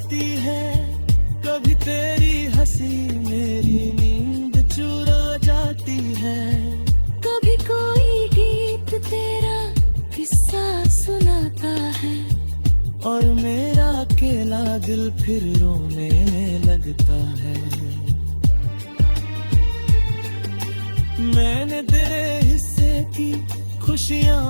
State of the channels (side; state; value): both; inverted; correlation -1.00